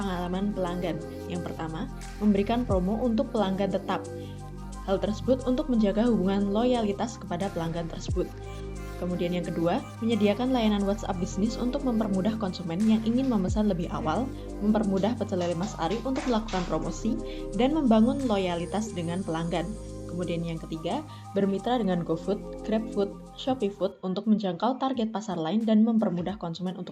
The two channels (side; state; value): both; identical; correlation 1.00